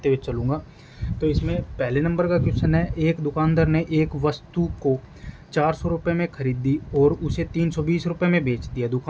हुए चलूँगा। तो इसमें पहले नंबर का क्वेश्चन है, एक दुकानदार ने एक वस्तु को 400 रुपये में खरीदी और उसे 320 रुपये में बेच दिया।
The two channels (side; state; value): both; identical; correlation 1.00